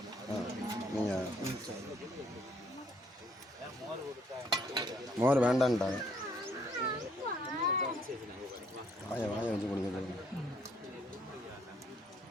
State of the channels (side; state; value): both; normal; correlation 0.66